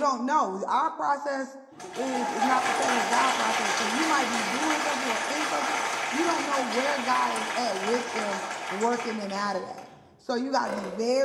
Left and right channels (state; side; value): identical; both; correlation 1.00